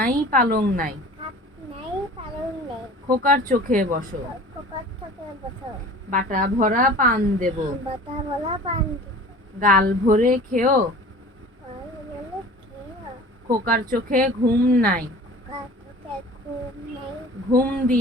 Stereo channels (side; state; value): both; normal; correlation 0.42